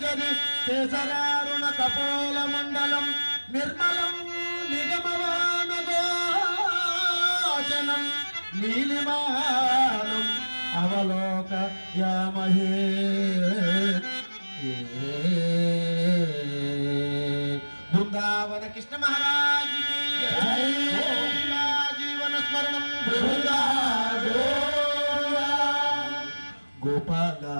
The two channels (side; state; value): both; inverted; correlation -1.00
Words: కేసరారుణ కపోల మండలం నిర్మలం నిగమవాన గోచనం నీలిమానం అవలోక యామహే బృందావన కృష్ణ మహారాజ్ జీవన స్మరణం గోపాల